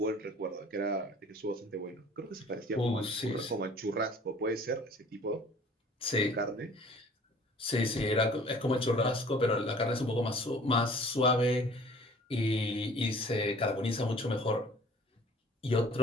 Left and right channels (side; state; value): both; normal; correlation 0.50